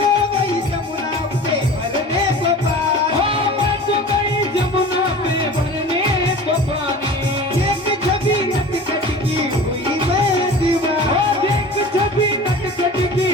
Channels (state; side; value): normal; both; correlation 0.39